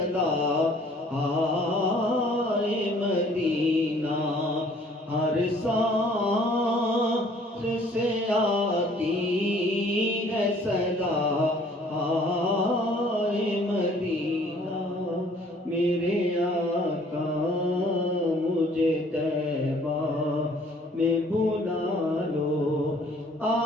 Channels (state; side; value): normal; both; correlation 0.57